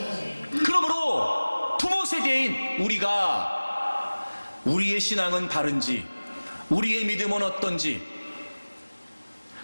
그러므로 부모 세대인 우리가 우리의 신앙은 바른지 우리의 믿음은 어떤지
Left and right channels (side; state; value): both; inverted; correlation -1.00